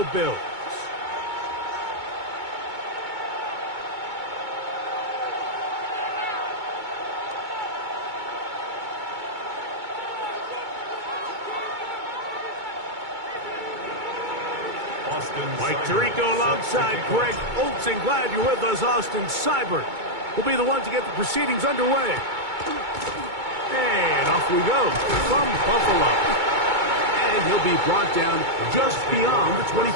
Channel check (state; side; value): late; left; 2.2 ms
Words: Bills. Mike Tirico alongside Greg Olson. Glad you're with us. Austin Seibert will be the one to get the proceedings underway. And off we go from Buffalo. And he'll be brought down just beyond the